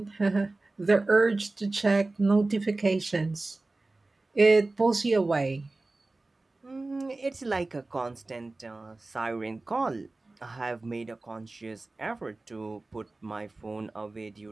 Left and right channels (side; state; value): left; quieter; 3.1 dB